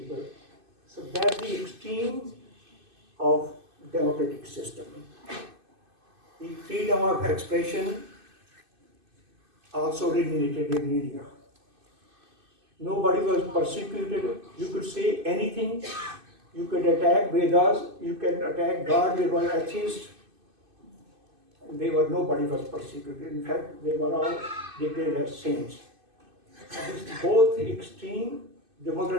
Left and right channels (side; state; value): left; late; 2.5 ms